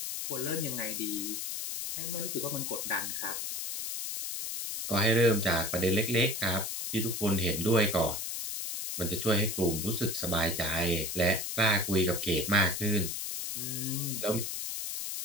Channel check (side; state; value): left; noise; hiss, 4 dB below the sound